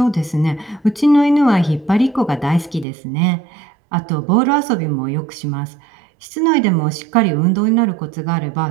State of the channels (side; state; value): left; drops out; at 2.9 s